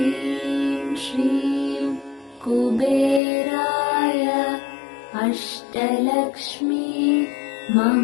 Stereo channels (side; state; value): right; drops out; at 3.2 s